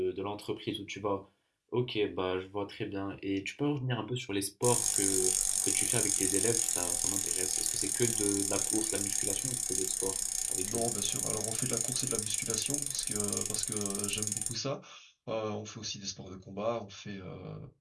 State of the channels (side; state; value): both; identical; correlation 1.00